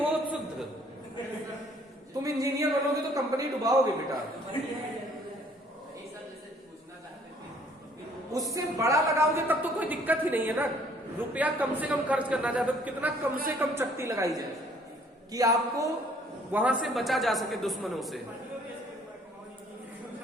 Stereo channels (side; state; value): both; normal; correlation 0.60